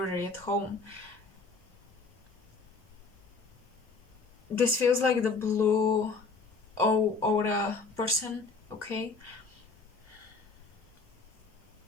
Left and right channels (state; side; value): quieter; right; 4.2 dB